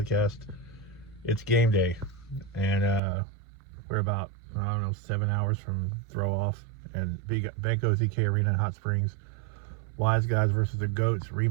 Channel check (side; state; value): left; drops out; at 3.0 s